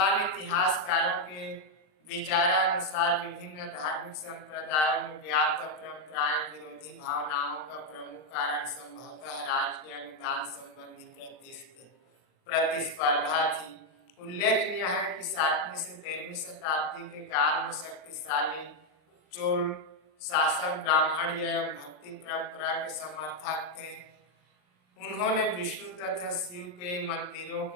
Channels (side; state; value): right; late; 39 ms